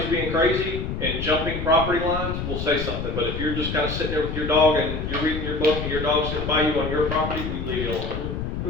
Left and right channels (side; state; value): left; noise; rumble, 4 dB below the sound